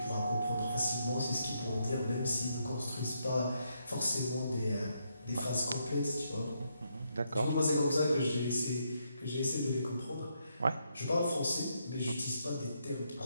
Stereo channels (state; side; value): inverted; both; correlation -0.78